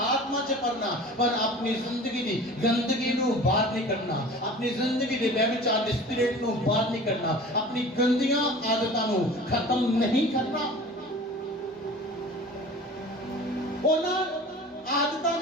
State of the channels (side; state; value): both; normal; correlation 0.41